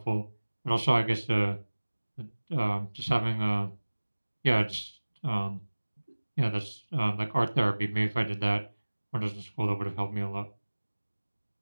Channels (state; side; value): inverted; both; correlation -1.00